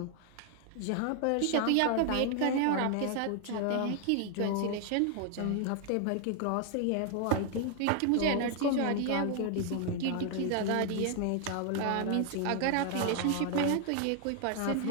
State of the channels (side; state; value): both; different; correlation 0.00